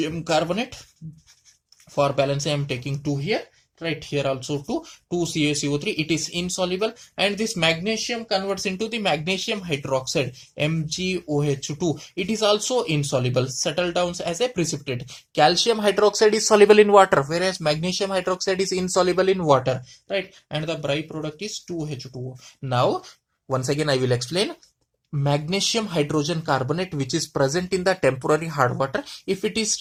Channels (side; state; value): both; identical; correlation 1.00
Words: carbonate. For balance, I am taking 2 here, right, here also 2 CaCO3, it is insoluble, and this magnesium converts into the magnesium hydroxide, MgOH2, it is also insoluble, settle down as a precipitate. Calcium hydroxide is soluble in water, whereas magnesium hydroxide is insoluble in water, right, and the byproduct is 2H2O. Now once again I will explain. Magnesium hydrogen carbonate, which is present in the temporary hard water, if it is